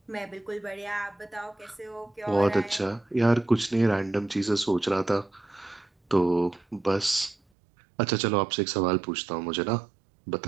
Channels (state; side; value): drops out; left; at 7.4 s